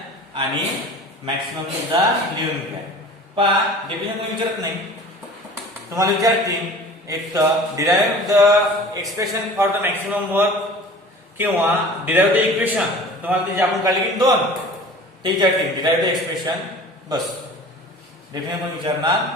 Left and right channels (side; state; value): both; normal; correlation 0.42